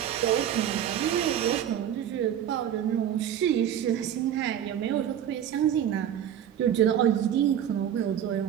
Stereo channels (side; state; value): left; quieter; 10.0 dB